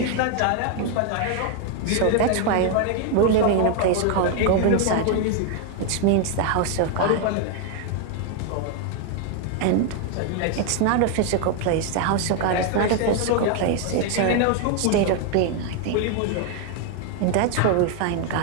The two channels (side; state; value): both; different; correlation 0.01